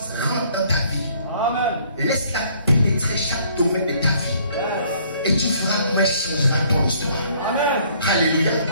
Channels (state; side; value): inverted; both; correlation -0.61